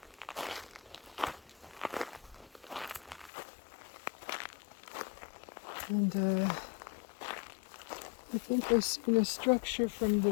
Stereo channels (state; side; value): drops out; right; at 3.3 s